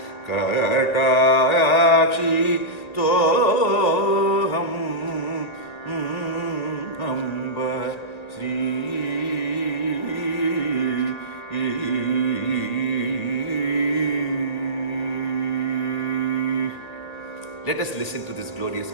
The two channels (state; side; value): late; right; 1.9 ms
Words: Katakshi Toham Amba Sri. Let us listen to this glorious